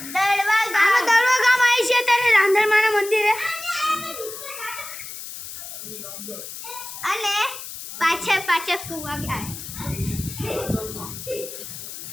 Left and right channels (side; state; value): left; noise; hiss, 11 dB below the sound